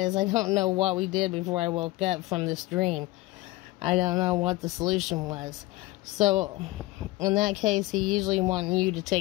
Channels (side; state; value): right; quieter; 19.2 dB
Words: I don't know what we did before I woke up from this dream. I don't know what the solution was. So in that case, he usually wants you to